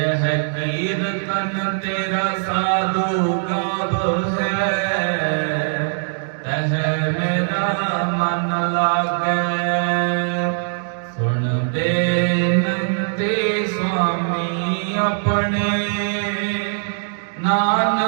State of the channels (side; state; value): left; silent; digital silence